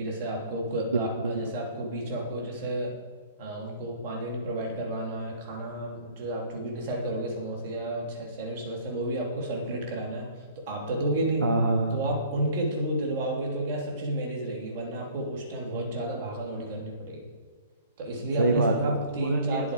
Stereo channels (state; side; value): inverted; both; correlation -0.52